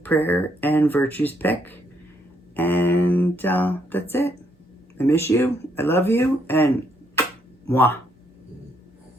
prayer and Virtue's Pick. And that's it. I miss you. I love you. And mwah.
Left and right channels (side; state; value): both; normal; correlation 0.73